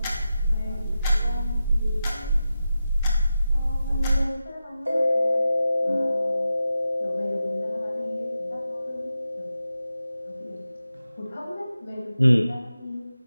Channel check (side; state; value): both; inverted; correlation -0.90